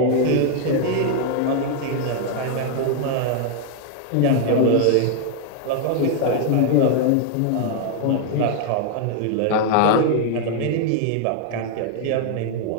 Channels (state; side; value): different; both; correlation 0.00